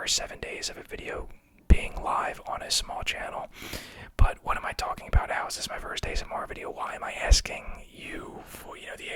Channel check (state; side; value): identical; both; correlation 1.00